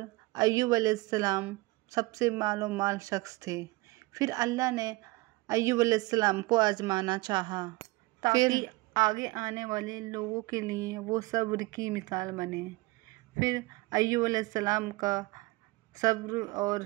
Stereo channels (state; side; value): quieter; left; 22.5 dB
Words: ایوب علیہ السلام سب سے مال و مال شخص تھے۔ پھر اللہ نے ایوب علیہ السلام کو آزمانا چاہا تاکہ آگے آنے والے لوگوں کے لیے وہ صبر کی مثال بنے۔ پھر ایوب علیہ السلام کا صبر اور